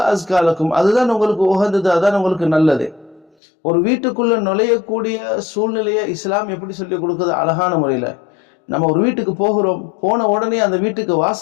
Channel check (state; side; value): drops out; right; at 3.3 s